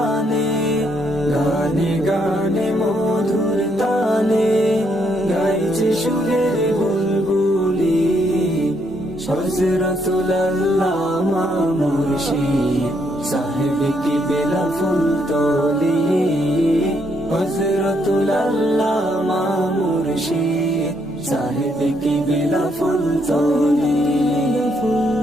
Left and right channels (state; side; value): normal; both; correlation 0.74